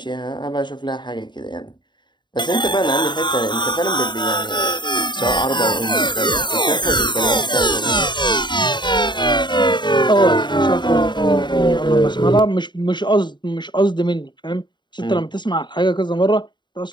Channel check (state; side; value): late; right; 0.22 ms